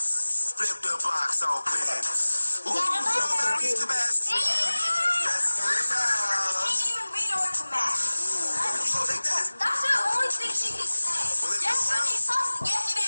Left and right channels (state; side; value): inverted; both; correlation -1.00